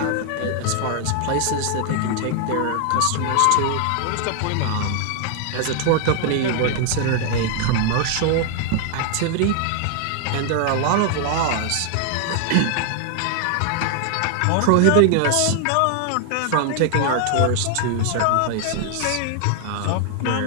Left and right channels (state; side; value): different; both; correlation 0.00